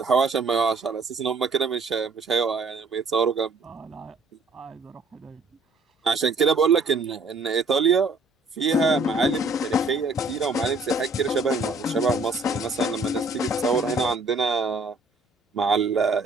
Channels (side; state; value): left; quieter; 3.2 dB